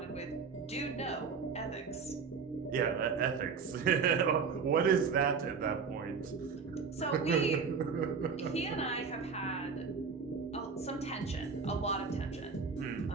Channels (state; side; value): quieter; left; 5.5 dB